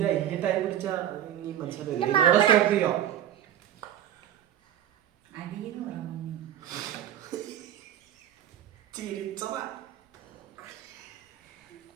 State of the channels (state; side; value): quieter; left; 11.1 dB